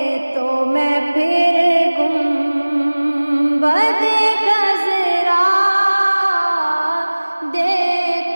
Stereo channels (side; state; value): both; inverted; correlation -1.00